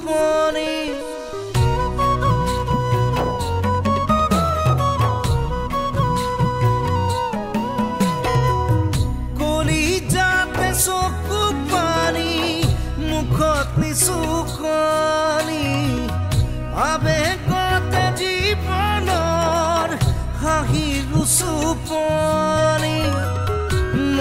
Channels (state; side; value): identical; both; correlation 1.00